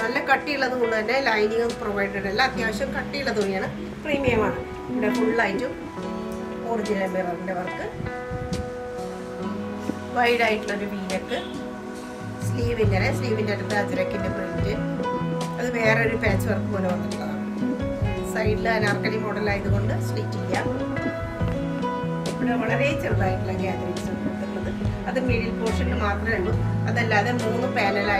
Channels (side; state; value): both; identical; correlation 1.00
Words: കട്ടിയുള്ളത് കൊണ്ട് തന്നെ ലൈനിങ് പ്രൊവൈഡഡ് അല്ല. അത്യാവശ്യം കട്ടിയുള്ള തുണിയാണ്. പ്രീമിയമാണ്. ഇവിടെ ഫുള്ളായിട്ടും ഒറിജിനൽ മിററിൻ്റെ വർക്ക്. വൈഡായിട്ടുള്ളൊരു വീനക്ക്. സ്ലീവിൻ്റെ അടുത്ത് അജ്രക്കിൻ്റെ പ്രിൻറ്റ്. അത് വേറൊരു പാച്ച് വർക്ക് പോലെ വന്നിട്ടുള്ളതാണ്. സൈഡിൽ അനാർക്കലി മോഡലായതുകൊണ്ട് സ്ലിറ്റ് ഇല്ല. ഇവിടെ വളരെ ചെറുതായിട്ടുള്ള ഗ്യാദറിങ്സ് കൊടുത്തിട്ടുള്ളത്. അത് മിഡിൽ പോർഷനിൽ മാത്രമേ ഉള്ളൂ. അതല്ലാതെ 3